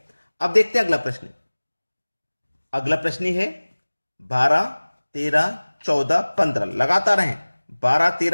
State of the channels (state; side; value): inverted; both; correlation -1.00